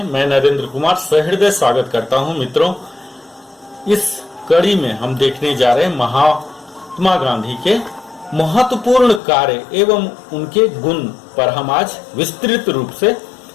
मैं नरेंद्र कुमार सहृदय स्वागत करता हूं। मित्रों, इस कड़ी में हम देखने जा रहे हैं महात्मा गांधी के महत्वपूर्ण कार्य एवं उनके गुण पर हम आज विस्तृत रूप से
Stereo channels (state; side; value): drops out; right; at 9.2 s